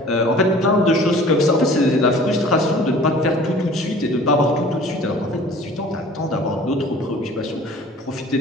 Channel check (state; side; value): normal; both; correlation 0.47